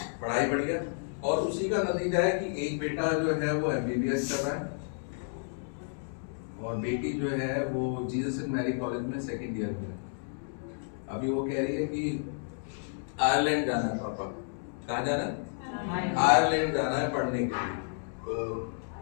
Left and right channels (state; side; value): silent; right; digital silence